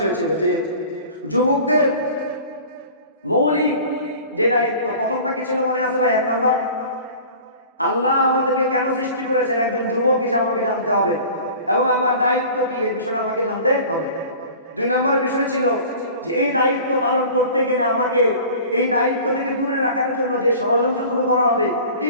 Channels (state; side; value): inverted; both; correlation -0.42